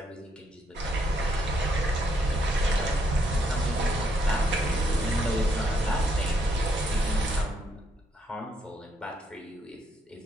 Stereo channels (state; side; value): normal; both; correlation 0.74